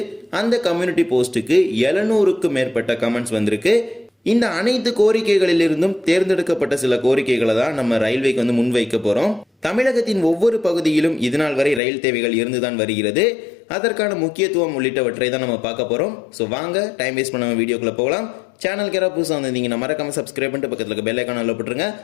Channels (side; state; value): right; drops out; at 11.8 s